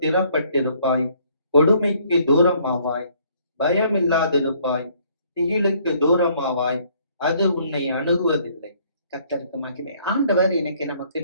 கொடுமைக்கு தூரமாவாய், பயமில்லாதிருப்பாய், திகிலுக்கு தூரமாவாய், அது உன்னை அணுகுவதில்லை. கர்த்தருக்கு மகிமை. ஆண்டவர் இன்னைக்கு நம்ம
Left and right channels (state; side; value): inverted; both; correlation -0.63